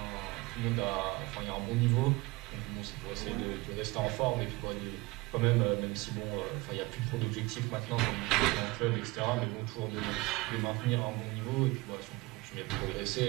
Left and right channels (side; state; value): left; quieter; 22.9 dB